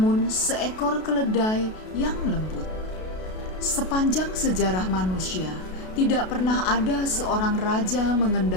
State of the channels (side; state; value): right; late; 32 ms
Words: seekor keledai yang lembut. Sepanjang sejarah manusia, tidak pernah ada seorang raja